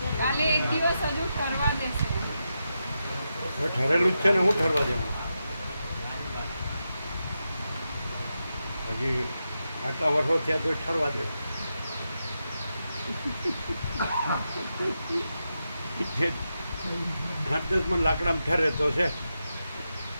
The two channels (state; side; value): inverted; both; correlation -0.87